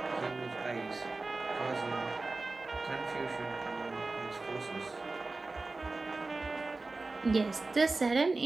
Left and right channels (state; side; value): quieter; left; 3.5 dB